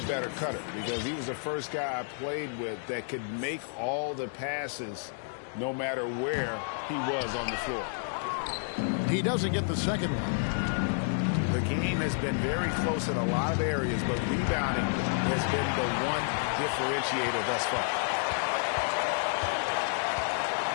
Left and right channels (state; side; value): silent; right; digital silence